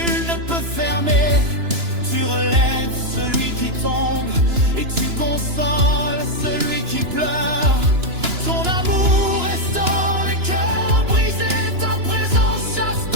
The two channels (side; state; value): left; late; 2.9 ms